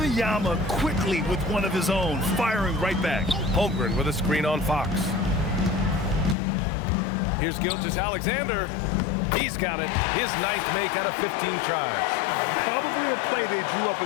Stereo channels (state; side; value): drops out; right; at 6.4 s